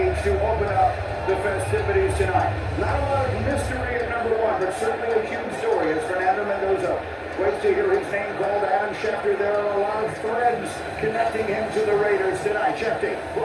to open up the festivities tonight. Not a lot of mystery at number one, but certainly a huge story is Fernando Mendoza. Waits to hear his name called. Adam Schefter. There are a lot of threads connecting him to the Raiders tonight. Schefter.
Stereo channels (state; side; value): identical; both; correlation 1.00